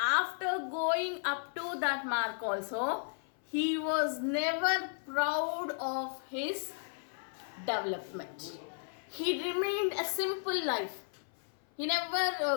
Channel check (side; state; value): right; silent; 55 dB below the other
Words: going up to that mark also, he was never proud of his development. He remained a simple life. He